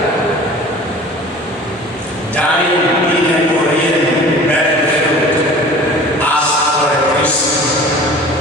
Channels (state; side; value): normal; both; correlation 0.43